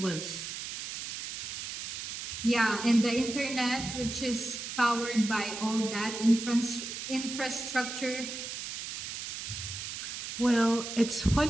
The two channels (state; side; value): noise; right; hiss, 7 dB below the sound